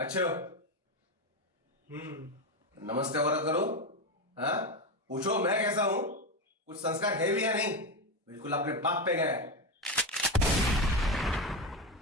हो? नमस्ते वरद करो। हाँ, पूछो मैं कैसा हूं? कुछ संस्कार है भी या नहीं? बिल्कुल अपने बाप पे गया है।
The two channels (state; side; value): normal; both; correlation 0.14